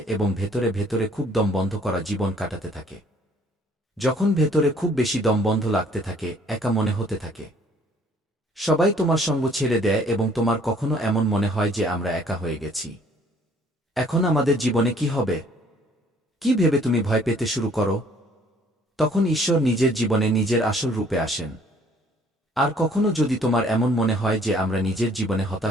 এবং ভেতরে ভেতরে খুব দমবন্ধ করা জীবন কাটাতে থাকে। যখন ভেতরে খুব বেশি দমবন্ধ লাগতে থাকে, একা মনে হতে থাকে, সবাই তোমার সঙ্গ ছেড়ে দেয়, এবং তোমার কখনো এমন মনে হয় যে আমরা একা হয়ে গেছি, এখন আমাদের জীবনে কি হবে, কি ভেবে তুমি ভয় পেতে শুরু করো, তখন ঈশ্বর নিজের জীবনে নিজের আসল রূপে আসেন। আর কখনো যদি তোমার এমন মনে হয় যে আমরা নিজের জীবনে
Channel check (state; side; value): normal; both; correlation 0.59